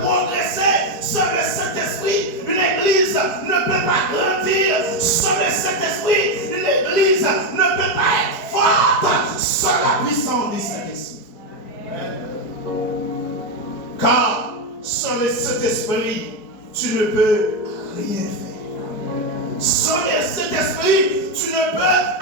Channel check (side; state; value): right; late; 4.6 ms